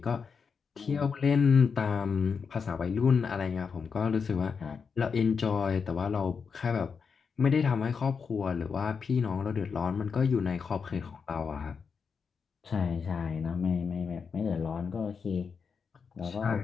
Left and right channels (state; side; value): quieter; right; 5.8 dB